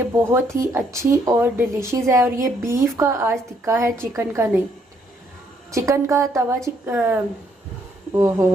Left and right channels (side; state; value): both; normal; correlation 0.69